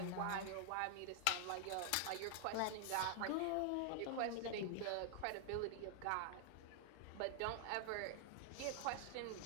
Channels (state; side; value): different; both; correlation 0.00